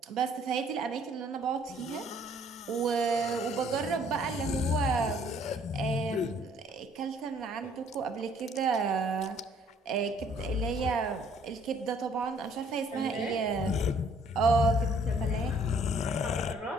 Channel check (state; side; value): normal; both; correlation 0.60